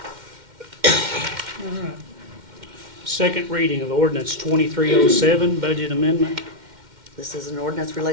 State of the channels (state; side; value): late; left; 2.1 ms